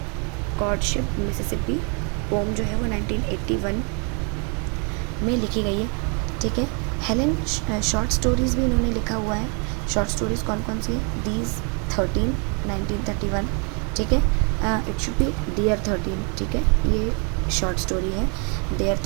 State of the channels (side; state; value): left; quieter; 36.2 dB